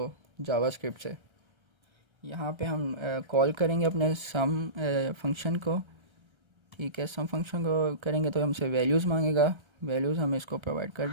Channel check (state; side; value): late; left; 1.3 ms